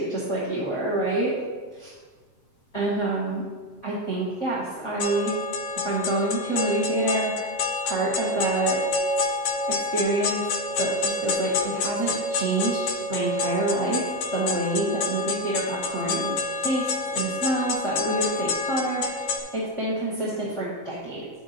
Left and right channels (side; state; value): right; late; 7.6 ms